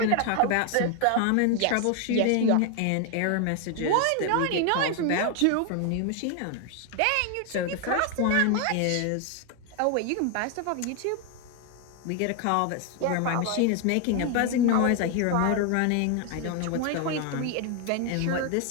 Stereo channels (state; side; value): different; both; correlation 0.01